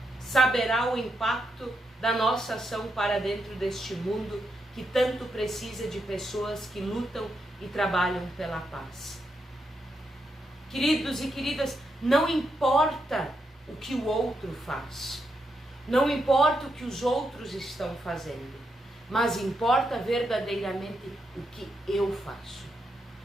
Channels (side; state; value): both; normal; correlation 0.82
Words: saberá o impacto da nossa ação para dentro deste mundo que tanto precisa de pessoas que lutam e trabalham pela paz. Queridos e queridas, não importa o que o outro faz, não importa o que os outros estão fazendo, mas importa verdadeiramente o que eu faço,